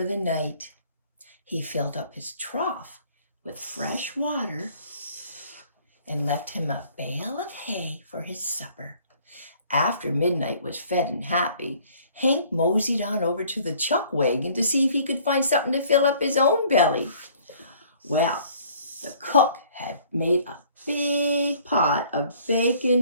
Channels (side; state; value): both; inverted; correlation -0.56